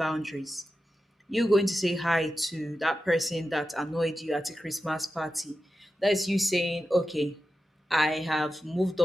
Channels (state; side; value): normal; both; correlation 0.91